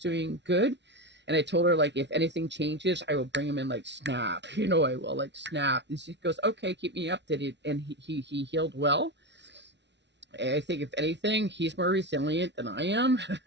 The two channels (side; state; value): left; late; 0.51 ms